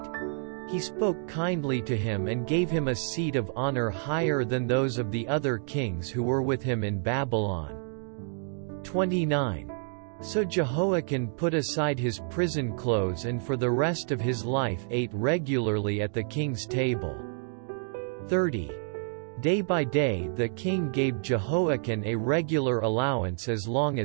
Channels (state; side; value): silent; left; digital silence